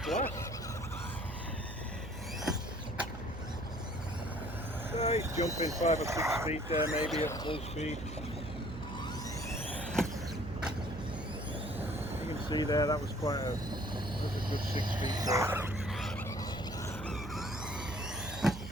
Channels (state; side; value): noise; right; hum, 9 dB below the sound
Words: blast. So he's jumping 5 or 6 feet there, maybe at full speed. You can see there, that was a good 6 feet there.